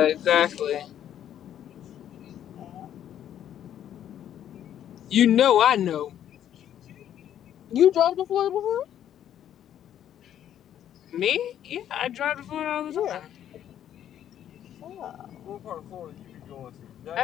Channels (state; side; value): quieter; right; 10.5 dB